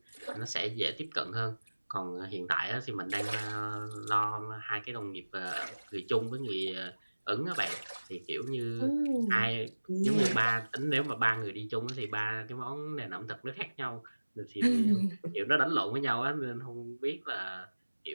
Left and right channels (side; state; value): both; inverted; correlation -1.00